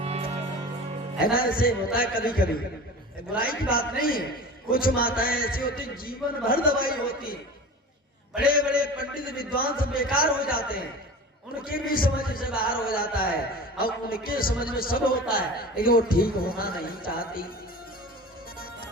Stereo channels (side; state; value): both; normal; correlation 0.35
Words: है ना, ऐसे होता है कभी कभी, बुराई की बात नहीं है। कुछ माताएं ऐसी होती जीवन भर दवाई होती, बड़े बड़े पंडित विद्वान सब बेकार हो जाते हैं, उनके भी समझ से बाहर हो जाता है और उनके समझ में सब होता है, लेकिन वो ठीक होना नहीं चाहती।